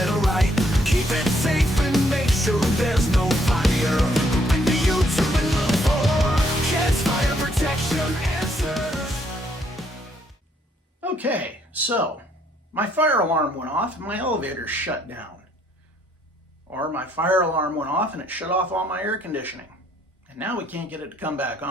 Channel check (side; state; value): both; normal; correlation 0.69